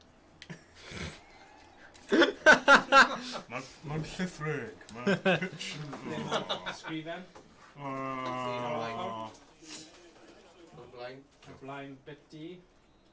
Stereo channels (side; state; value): both; identical; correlation 1.00